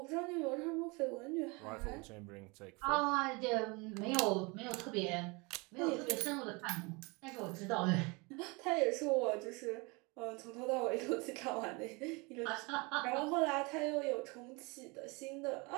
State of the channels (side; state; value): left; quieter; 27.8 dB